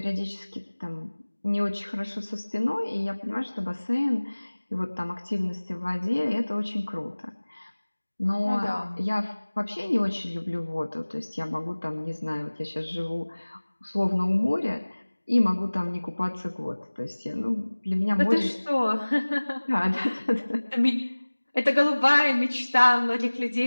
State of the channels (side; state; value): both; inverted; correlation -1.00